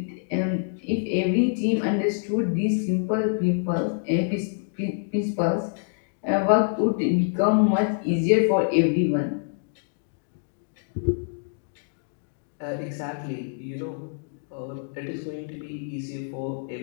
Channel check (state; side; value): silent; right; digital silence